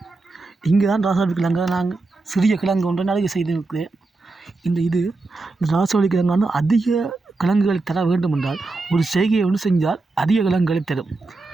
இங்கே தான் ராசவள்ளி கிழங்கை நாங்கள் சிறிய கிழங்கு ஒன்றை நிறைய செய்திருக்கிறேன். இந்த ராசவள்ளி கிழங்கு வந்து அதிக கிழங்குகளை தர வேண்டும் என்றால் ஒரு செய்கையை ஒன்று செஞ்சால் அதிக கிழங்குகளை தரும்.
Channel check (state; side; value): quieter; left; 3.5 dB